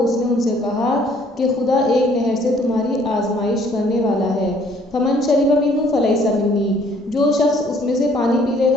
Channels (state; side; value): normal; both; correlation 0.60